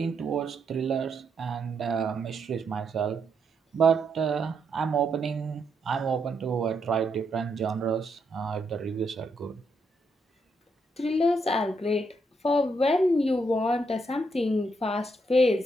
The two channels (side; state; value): both; normal; correlation 0.78